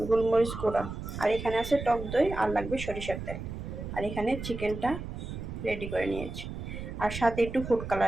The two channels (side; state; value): right; noise; rumble, 8 dB below the sound